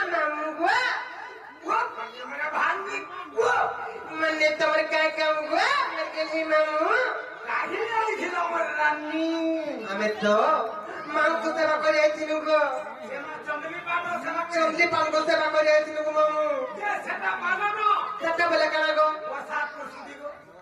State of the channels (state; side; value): identical; both; correlation 1.00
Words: मामुगवा वो मेरा भांगी वो मने तोर काय काम गवा मने मामू काहे नहीं खिलो मर रानी हमें तो मांगतो सेवा करे आइथिनु गो चंदली पान को सेवा करे आइथिनु गो मामू जे सेटा माननो सेटा बोले काना गो प्रसाद प्रसुदी गो